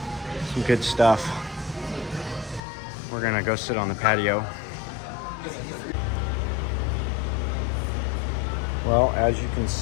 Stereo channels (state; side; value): drops out; right; at 2.6 s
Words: some good stuff. We're gonna go sit on the patio. Well, as you can